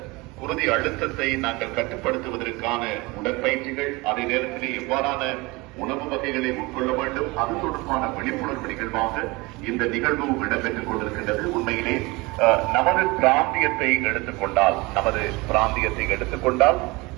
குருதி அழுத்தத்தை நாங்கள் கட்டுப்படுத்துவதற்கான உடற்பயிற்சிகள், அதே நேரத்திலே எவ்வாறான உணவு வகைகளை உட்கொள்ள வேண்டும், அது தொடர்பான விழிப்புணர்வு நிகழ்வாக இந்த நிகழ்வு இடம்பெற்றுக் கொண்டிருக்கின்றது. உண்மையிலே நமது பிராந்தியத்தை எடுத்துக்கொண்டால்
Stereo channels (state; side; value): quieter; left; 24.0 dB